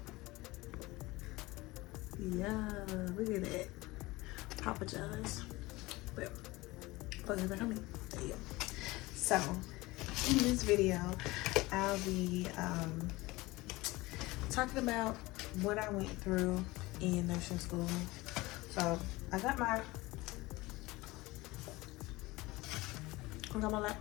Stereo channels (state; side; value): quieter; right; 20.9 dB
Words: Yeah, look at that. Papa John's. But focus back on me. There you go. So in this video, I'll be talking about what I went through in nursing school. So I got my